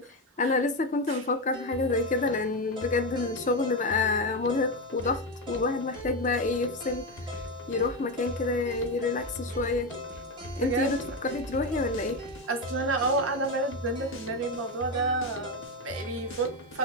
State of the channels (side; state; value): both; normal; correlation 0.13